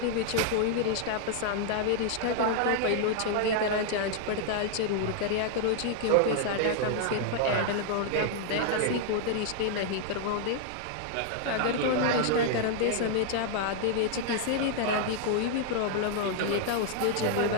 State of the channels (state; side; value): different; both; correlation -0.01